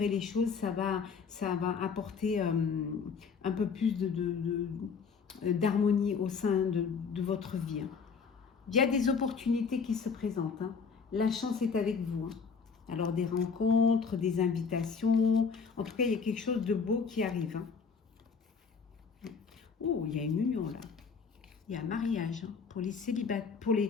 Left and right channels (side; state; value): right; quieter; 5.6 dB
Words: les choses, ça va apporter un peu plus d'harmonie au sein de votre vie. Hein. Il y a des opportunités qui se présentent. Hein. La chance est avec vous. Hein. Alors des rencontres, des invitations. En tout cas, il y a quelque chose de beau qui arrive. Hein. Oh, il y a une union là. Il y a un mariage. Hein. Pour les célibataires,